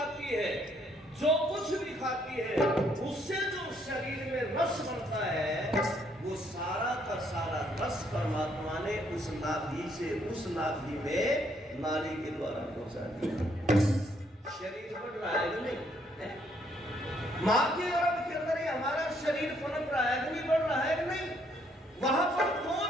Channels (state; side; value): normal; both; correlation 0.69